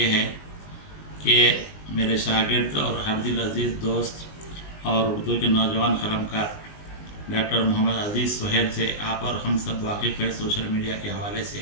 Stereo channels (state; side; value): late; right; 19 ms